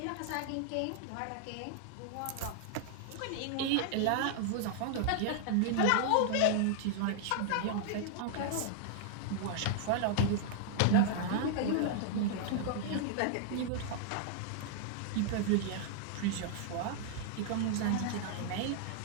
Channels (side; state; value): both; different; correlation -0.01